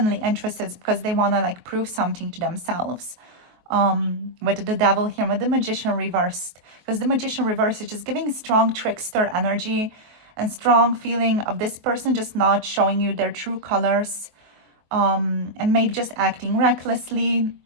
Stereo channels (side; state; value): left; late; 23 ms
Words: interested, it's because they want to like prove something to themselves. With the devil here, with the Magician reversed, because the Magician reversed is just giving strong trickster energy and strong feeling of this person just not showing you their true colors, and maybe just acting recklessly.